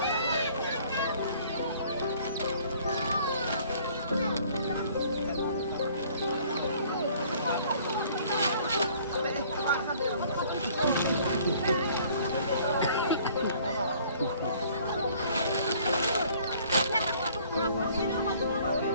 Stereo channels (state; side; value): inverted; both; correlation -0.56